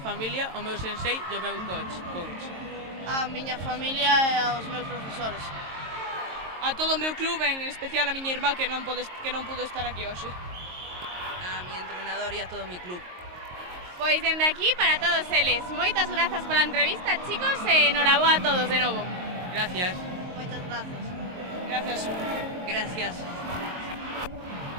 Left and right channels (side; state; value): left; late; 22 ms